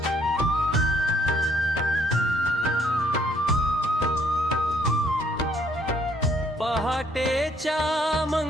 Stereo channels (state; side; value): normal; both; correlation 0.66